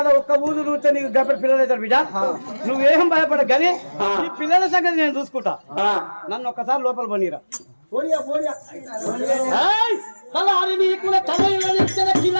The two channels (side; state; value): both; inverted; correlation -1.00